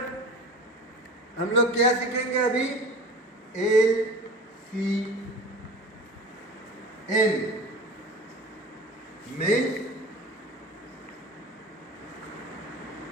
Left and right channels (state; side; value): normal; both; correlation 0.37